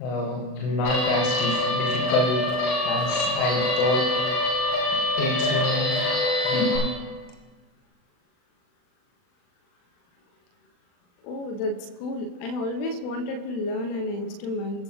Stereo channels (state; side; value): late; right; 40 ms